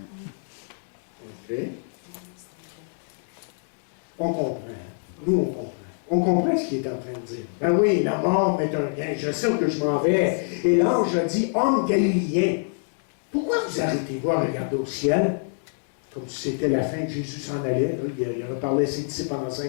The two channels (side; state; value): right; silent; digital silence